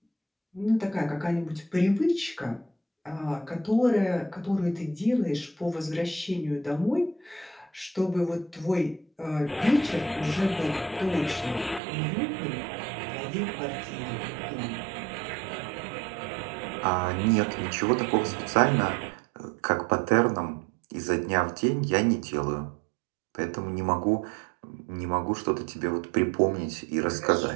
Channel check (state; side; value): drops out; left; at 11.8 s